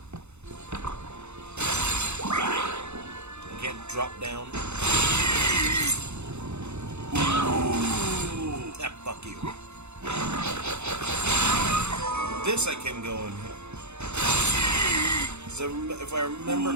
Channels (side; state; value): left; late; 0.81 ms